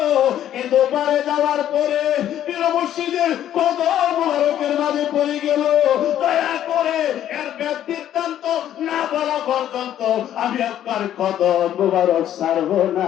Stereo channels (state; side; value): quieter; right; 11.2 dB